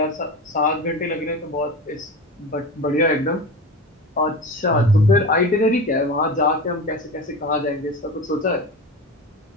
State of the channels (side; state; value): both; normal; correlation 0.27